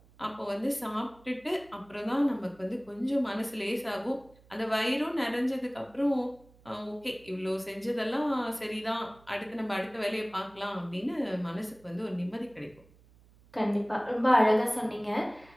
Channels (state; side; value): noise; right; hum, 27 dB below the sound